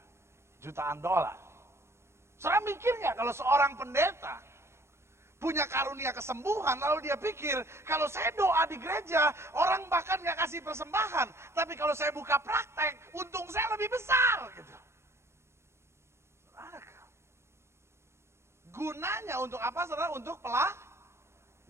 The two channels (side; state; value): left; late; 0.13 ms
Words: jutaan dolar. Saudara mikir nggak kalau seorang pendeta punya karunia kesembuhan, lalu dia pikir, kalau saya doa di gereja, orang bahkan nggak kasih persembahan. Tapi kalau saya buka praktek, untung saya lebih besar. Gitu. Gunanya untuk apa saudara? Untuk